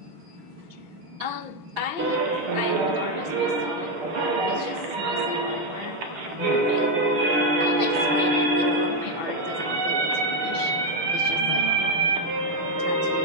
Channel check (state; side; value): late; left; 6.0 ms